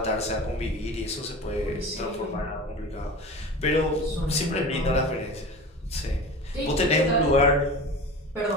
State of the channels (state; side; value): normal; both; correlation 0.33